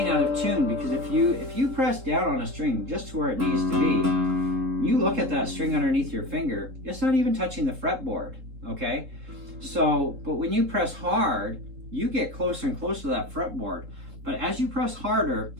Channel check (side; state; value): left; late; 3.8 ms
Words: out of tune. Because if you press down on a string just to where it needs to be, you look at that string underneath your finger, it's not even touching the fretboard, okay? So, but when you press hard, you get closer and closer to that fretboard. But as you press harder,